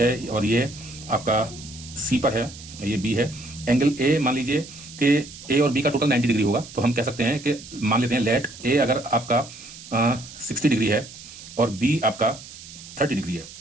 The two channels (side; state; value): right; noise; hiss, 16 dB below the sound